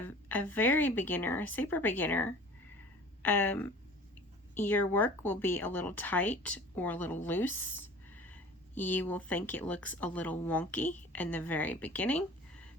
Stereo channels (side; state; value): both; normal; correlation 0.43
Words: a very beginner, a super beginner, your work will be a little tight or a little loose. You will think it looks a little wonky in the very beginning